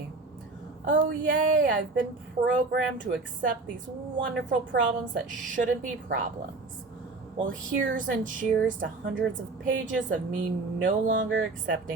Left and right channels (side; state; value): left; quieter; 3.6 dB